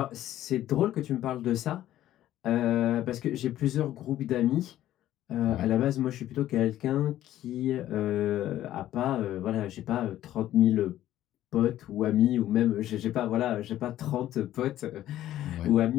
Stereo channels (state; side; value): quieter; right; 13.2 dB